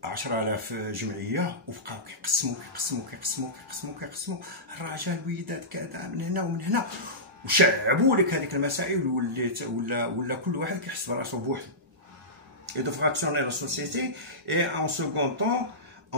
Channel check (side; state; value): both; normal; correlation -0.17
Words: 10,000 جمعيه، وبقاو كيقسموا الرجال الوليدات كذا من هنا ومن هنا، وشعبوا لك هذيك المسائل، ولا كل واحد كيحس براسو بوحدو. Et de fractionner la société, et en second temps